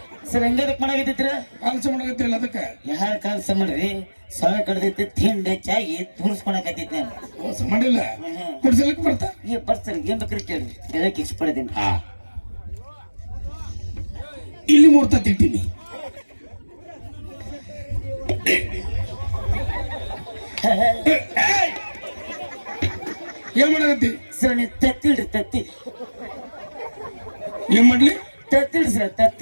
ಸರ್ ಹೆಂಗದಕ್ ಮಾಡಾಕತ್ತಿದ್ರ? ಕೆಲಸ ಮಾಡಕತ್ತಿಲ್ಲ ಅದಕ್ಕೆ. ಯಾರ ಕೆಲಸ ಮಾಡ್ರಿ, ಸೊಳ ಕಡ್ದೈತಿ, ತಿಂಡಿ ಚಾಗಿ ತೂರಿಸ್ಕೊಳಕತ್ತಿದ್ ನಾನು. ಕೆಲಸ ಮಾಡಿಲ್ಲ, ಕುಡ್ಸಲಕ್ಕೆ ಬರ್ತಾ. ಏ ಬರ್ಸರ್ ಏನ್ ಬೇಕ್ರಿ ಕೇಳಿ, ಹೇಳಕ್ ಇಷ್ಟಪಡ್ತೀನಿ. ಇಲ್ಲಿ 3 ತತ್ತಿ ಇಟ್ಟಿನಿ. ಏನ್ ಮಾಡಕತ್ತಿ? ಸರ್ ನೀವು ತತ್ತಿಡ್ರಿ, ತತ್ತಿ ಏನ್ ಮಾಡ್ಲಿ? ತತ್ತಿಡ್ರಿ ಸರ್,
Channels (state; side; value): inverted; both; correlation -1.00